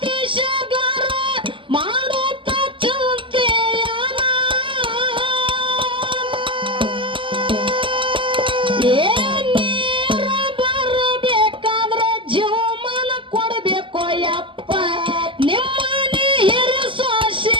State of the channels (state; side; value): late; left; 0.25 ms